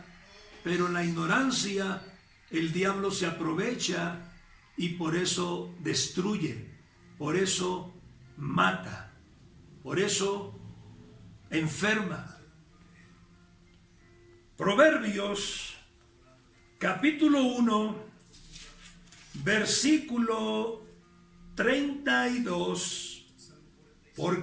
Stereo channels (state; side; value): identical; both; correlation 1.00